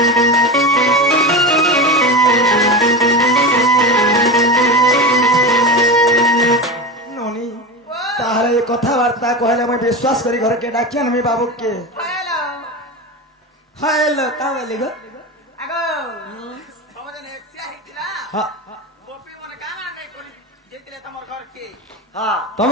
কথাবার্তা কহলে আমি বিশ্বাস করি ঘরকে ডাকি আনবি বাবুকে হ্যালো কা বলি গো আগো সমাজে এক্সিয়া হিতলা গোপী মনে কানা নাই করি যেতিলে তোমার ঘর কে হ্যাঁ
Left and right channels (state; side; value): normal; both; correlation 0.22